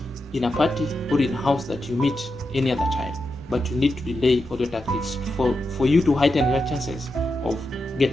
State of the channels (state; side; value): normal; both; correlation 0.87